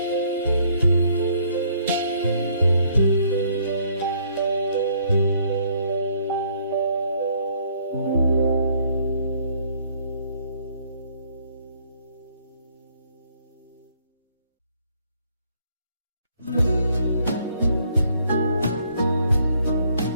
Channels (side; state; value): both; inverted; correlation -0.65